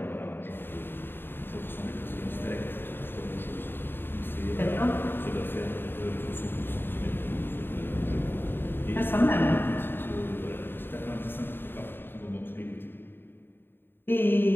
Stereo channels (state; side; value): late; right; 0.10 ms